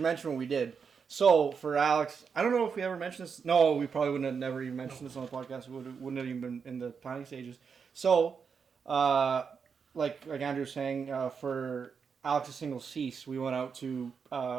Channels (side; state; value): left; quieter; 6.1 dB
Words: mention what we did. So, for Alex, I don't know if we ever mentioned this. No, we probably wouldn't have never even mentioned this on the podcast. It wouldn't have even been in the planning stages. So, like Andrew was saying, for Alex's single Cease, we went out to